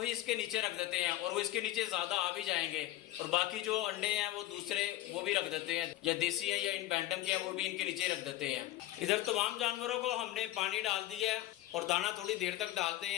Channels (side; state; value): right; quieter; 15.5 dB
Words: इसके नीचे रख देते हैं, और वो इसके नीचे ज्यादा आ भी जाएंगे। और बाकी जो अंडे हैं वो दूसरे वो भी रख देते हैं, या देसी है या इन बैंटम के हैं, वो भी इनके नीचे रख देते हैं। इधर तमाम जानवरों को हमने पानी डाल दिया है और दाना थोड़ी देर तक डालते